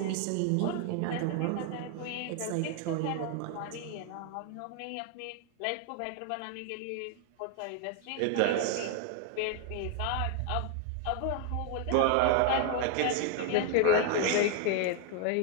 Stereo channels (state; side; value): different; both; correlation 0.00